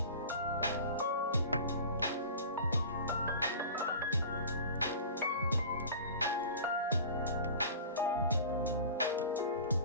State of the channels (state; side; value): inverted; both; correlation -0.38